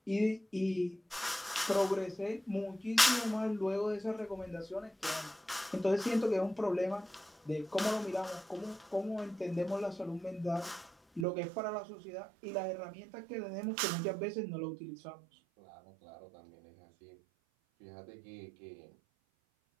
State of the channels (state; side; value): drops out; left; at 11.2 s